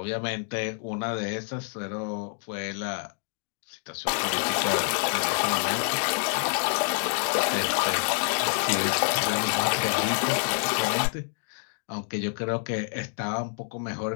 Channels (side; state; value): right; silent; 60 dB below the other